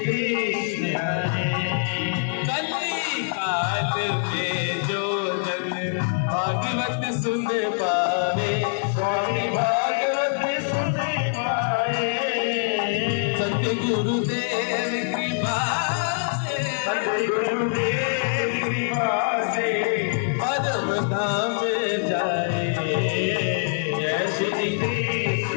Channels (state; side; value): silent; right; digital silence